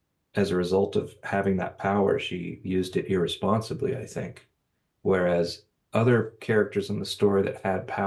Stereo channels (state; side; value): identical; both; correlation 1.00